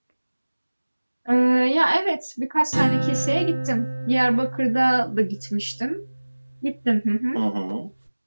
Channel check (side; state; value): both; inverted; correlation -1.00